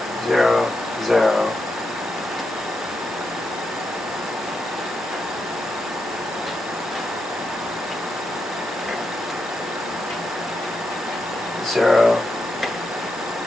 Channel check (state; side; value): normal; both; correlation 0.85